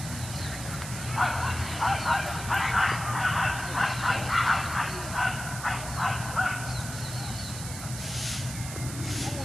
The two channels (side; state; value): right; noise; hiss, 9 dB below the sound